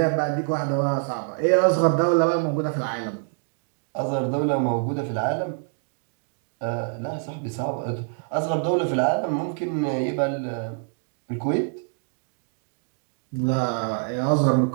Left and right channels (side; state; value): left; silent; 59 dB below the other